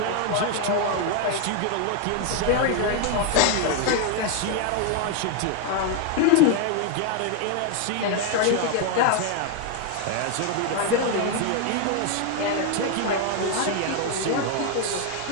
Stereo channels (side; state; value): both; different; correlation 0.00